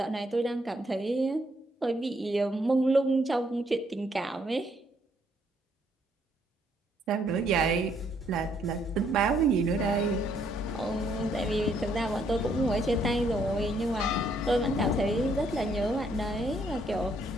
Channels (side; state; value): both; normal; correlation 0.70